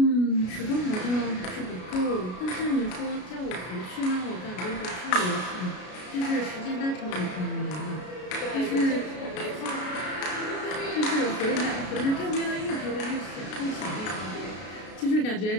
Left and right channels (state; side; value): late; right; 33 ms